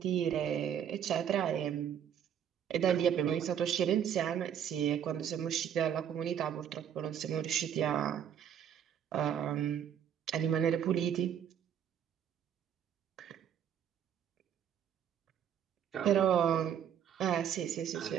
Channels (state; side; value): quieter; left; 9.0 dB